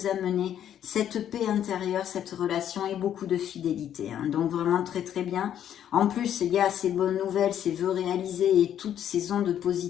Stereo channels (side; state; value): right; quieter; 10.2 dB